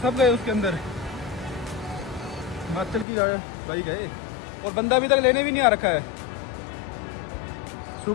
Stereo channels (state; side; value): drops out; right; at 3.1 s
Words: सब गए उसके अंदर। हिमाचल की बाइक है और बंदा अभी तक लेने भी नहीं आ रखा है।